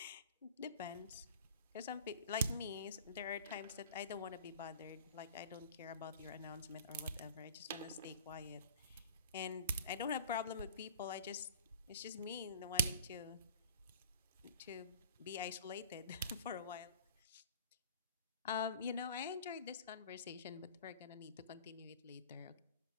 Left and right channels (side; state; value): both; inverted; correlation -0.43